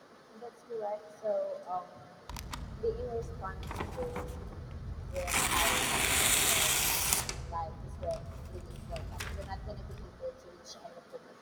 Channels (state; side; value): identical; both; correlation 1.00